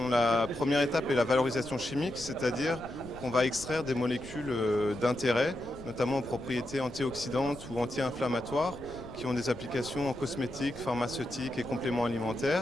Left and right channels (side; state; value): left; noise; rumble, 17 dB below the sound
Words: la première étape est la valorisation chimique, c'est-à-dire qu'on va extraire des molécules d'intérêt, notamment aux propriétés antioxydantes ou anti-inflammatoires, qui ont des applications en cosmétique, pharmaceutique et compléments